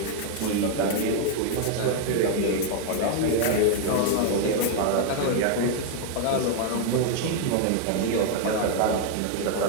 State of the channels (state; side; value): different; both; correlation 0.00